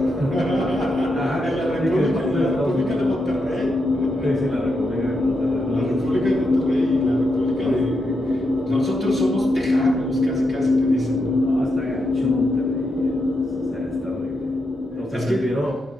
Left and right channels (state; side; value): normal; both; correlation 0.84